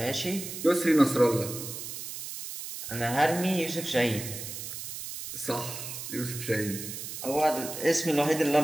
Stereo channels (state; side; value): noise; right; hiss, 8 dB below the sound